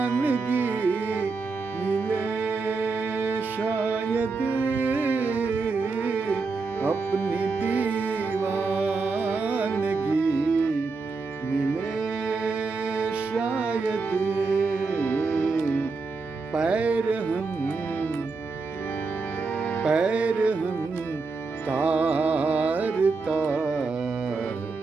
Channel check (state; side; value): quieter; left; 4.2 dB